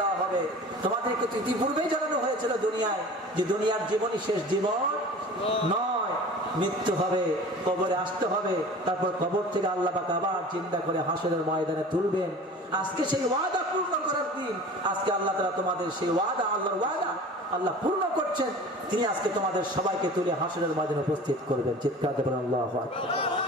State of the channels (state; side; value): normal; both; correlation 0.40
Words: দেওয়া হবে তোমাদেরকে ইতিপূর্বেই জানানো হয়েছিল দুনিয়ায় যে দুনিয়ার জীবনই শেষ জীবন নয়, মৃত্যু হবে, কবরে আসতে হবে, তারপর কবর থেকে আল্লাহ পাক আবার জিন্দা করে হাসরের ময়দানে তুলবেন। আজকে সেই ওয়াদা পূর্ণ করার দিন। আজকে আল্লাহ তাআলা তোমাদের সেই ওয়াদা, আল্লাহর ওয়াদা আল্লাহ পূর্ণ করছেন। তিনি আজকে তোমাদের সবাইকে তুলে হাসরের ময়দানে উপস্থিত করবেন। চিৎকার দেবেন আল্লাহু আকবার।